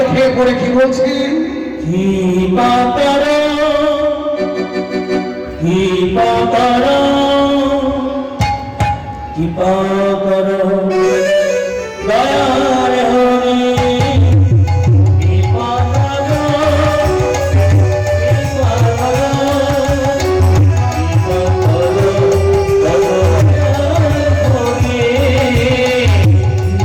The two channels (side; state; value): both; identical; correlation 1.00